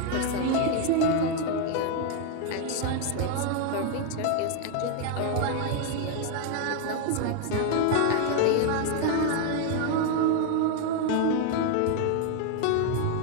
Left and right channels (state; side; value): different; both; correlation 0.01